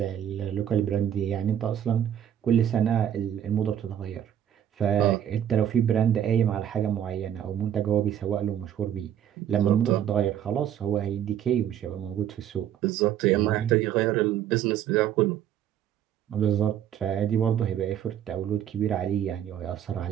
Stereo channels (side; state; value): left; quieter; 10.1 dB